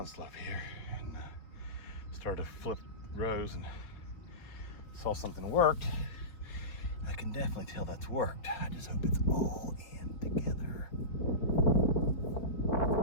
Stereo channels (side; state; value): right; late; 4.5 ms